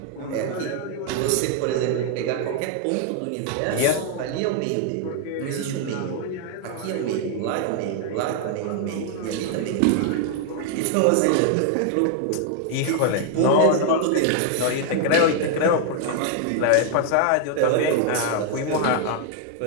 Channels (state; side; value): different; both; correlation 0.00